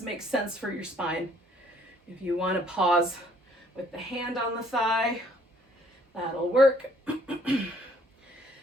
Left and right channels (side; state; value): both; normal; correlation 0.62